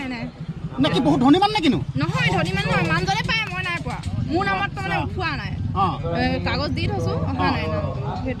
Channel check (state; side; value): identical; both; correlation 1.00